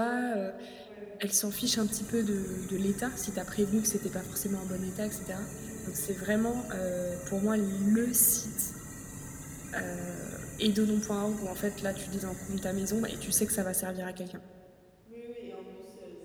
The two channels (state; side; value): identical; both; correlation 1.00